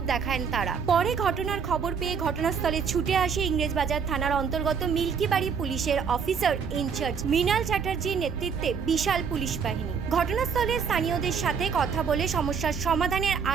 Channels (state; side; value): quieter; left; 6.4 dB